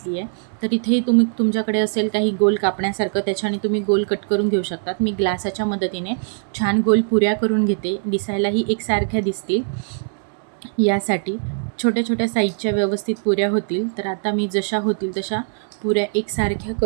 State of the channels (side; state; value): left; silent; 65 dB below the other